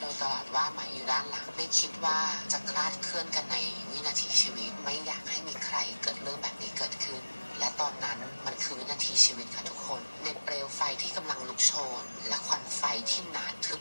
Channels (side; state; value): both; inverted; correlation -1.00